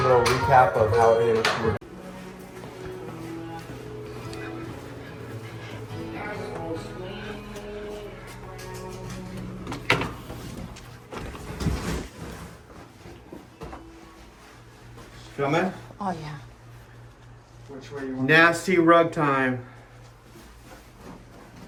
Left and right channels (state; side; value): identical; both; correlation 1.00